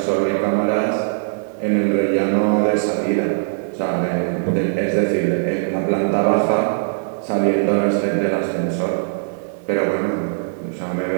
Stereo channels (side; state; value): left; silent; digital silence